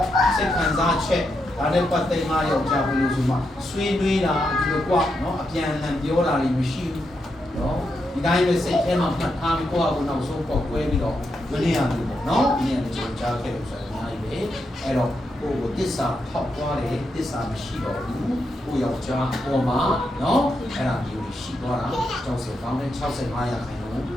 စိတ်ခံစားချက်ဒါနဲ့ပတ်သက်မှယောက်ျားဘယ်လိုဆိုမှဆွေးနွေးတာဒီလိုကွာနော်အပြန်အလှန်ပြောတာတွေမရှိဘူးနော်ဒီတိုင်းပဲစိတ်ထဲမှာမှတ်ထားပြီးကိုယ့်အကူနောက်ဆုံးပေါက်ကွဲပြီးတော့မနေရဘူးပေါ့နော်ဒီနေ့ကျွန်တော်ကြားခဲ့လို့ဆိုရင်အများကြီးပဲအဲ့တော့ကိုယ့်ကိုတစ္ဆာဖောက်သွားတယ်တစ္ဆာမရှိတော့ဘူးကိုယ့်ယောက်ျားပေါ်မှာနော်အဲ့ဒါမျိုးရှိသွားတာကျောင်းစကောင်းတဲ့65ရာခိုင်နှုန်း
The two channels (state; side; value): normal; both; correlation 0.83